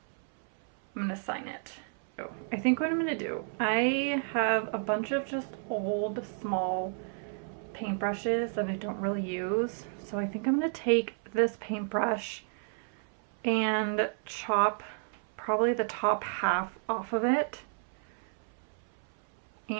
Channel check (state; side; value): silent; left; 57 dB below the other